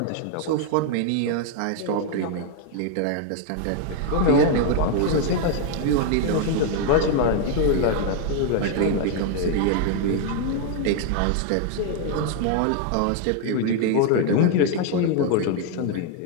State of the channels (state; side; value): different; both; correlation 0.00